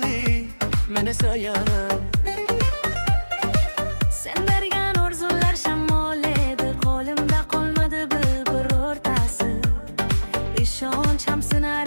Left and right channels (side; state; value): both; inverted; correlation -1.00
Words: men esa yana. Sen bergan orzular shamol edi, qo'limda qolmadi birortasi. Ishonchim